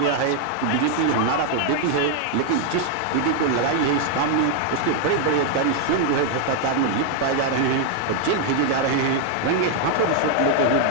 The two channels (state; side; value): different; both; correlation 0.00